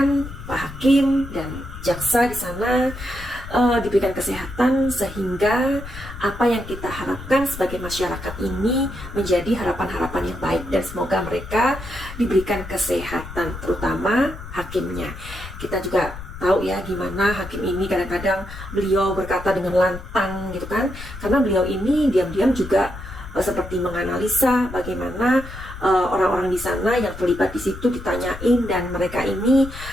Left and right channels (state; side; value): noise; left; rumble, 12 dB below the sound